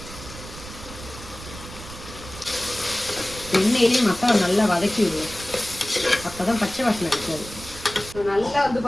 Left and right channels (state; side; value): noise; right; rumble, 14 dB below the sound